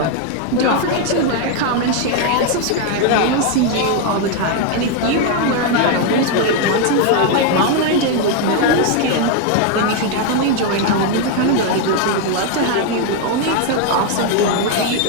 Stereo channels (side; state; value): both; different; correlation 0.01